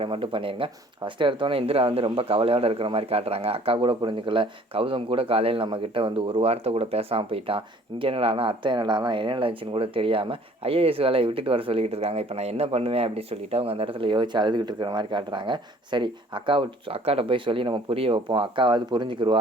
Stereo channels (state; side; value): normal; both; correlation 0.55